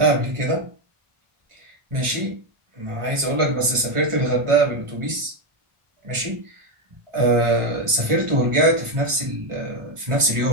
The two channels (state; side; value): late; left; 1.4 ms